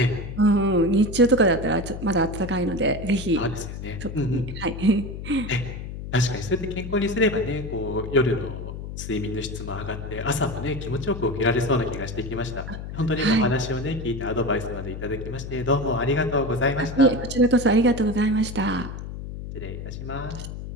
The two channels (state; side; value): noise; left; hum, 8 dB below the sound